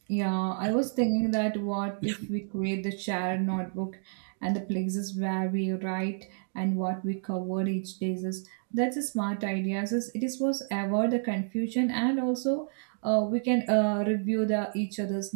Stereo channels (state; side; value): silent; left; digital silence